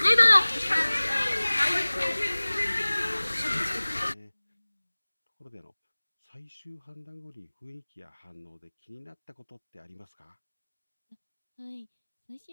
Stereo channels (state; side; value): inverted; both; correlation -1.00